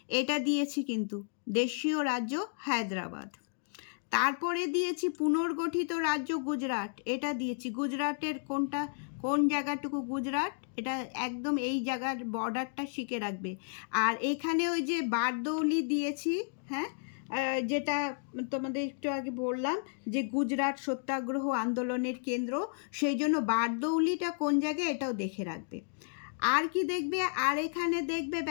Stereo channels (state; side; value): silent; right; digital silence